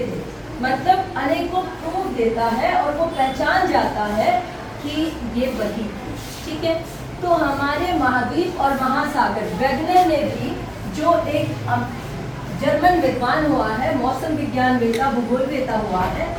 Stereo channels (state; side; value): identical; both; correlation 1.00